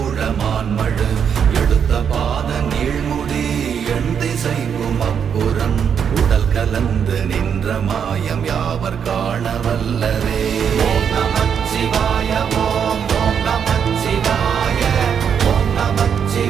எடுத்த பாத நீழ்முடி எண் திசைக்கும் அப்புறம் உடல் கலந்து நின்ற மாயம் யாவர் காண வல்லரே. ஓம் நமச்சிவாய ஓம் ஓம் நமச்சிவாய ஓம்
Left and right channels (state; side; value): quieter; left; 7.6 dB